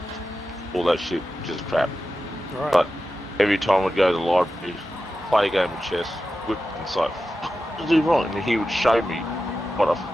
all that shit, just crap. Right. But every time I'd go to the library, play a game of chess, whip and say, "What did I do wrong?" And he would show me what I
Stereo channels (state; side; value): normal; both; correlation 0.92